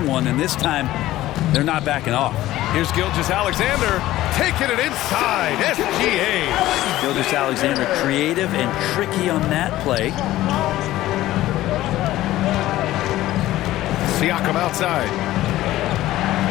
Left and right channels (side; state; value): right; quieter; 15.4 dB